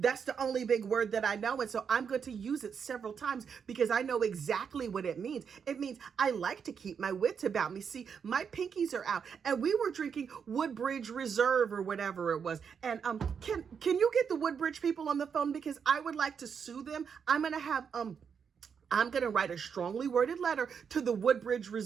the only big word that I know, and so I'm going to use it several times because I know exactly what it means. It means I like to keep my wits about me. See, my pinkies are out, and we were drinking Woodbridge Reserve or whatever it was. And can you get the Woodbridge people on the phone, because I would like to sue them. I'm going to write a strongly worded letter to the Woodbridge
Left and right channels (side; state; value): left; quieter; 6.8 dB